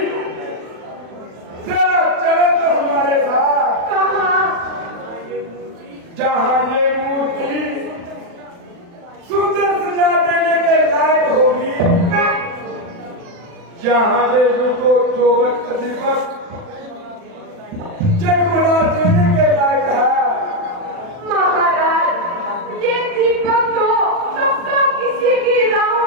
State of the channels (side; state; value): left; late; 40 ms